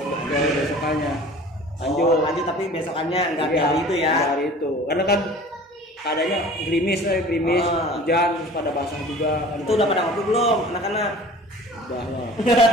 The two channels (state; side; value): normal; both; correlation 0.45